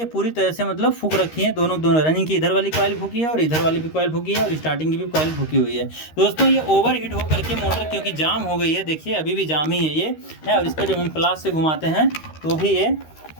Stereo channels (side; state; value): right; late; 13 ms